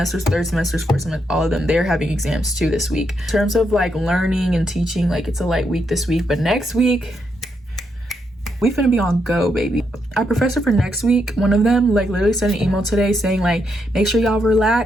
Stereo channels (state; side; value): normal; both; correlation 0.80